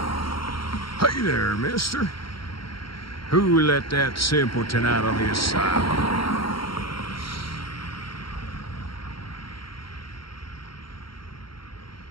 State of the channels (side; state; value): right; late; 0.73 ms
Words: Hey there, mister. Who let that simpleton out of the asylum?